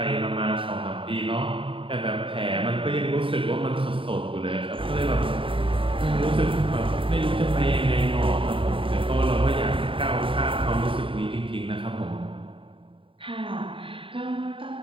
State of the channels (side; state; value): left; late; 0.25 ms